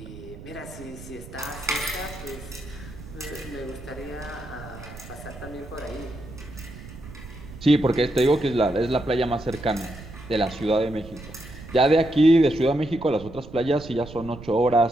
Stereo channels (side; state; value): right; noise; rumble, 15 dB below the sound